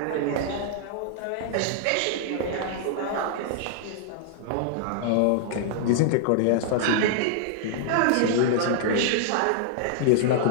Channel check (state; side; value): different; both; correlation -0.01